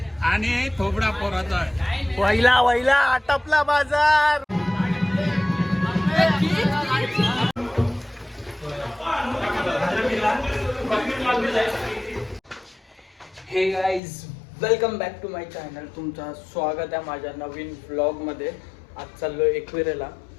आणि थोबडा पोराचा वैला वैला आटपला बाजार. Hey guys, welcome back to my channel. तुमचं स्वागत आहे माझ्या नवीन व्लॉगमध्ये. आज चाललो एकविरेला.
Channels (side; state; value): right; drops out; at 14.0 s